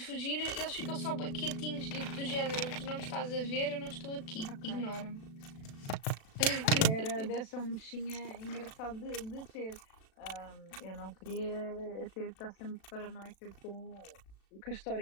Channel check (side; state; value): right; late; 36 ms